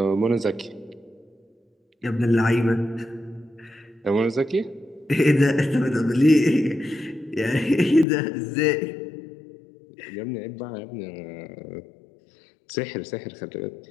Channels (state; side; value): drops out; right; at 8.1 s